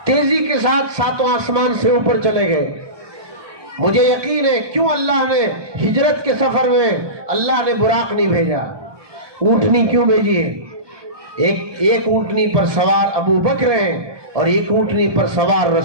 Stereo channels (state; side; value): late; left; 1.2 ms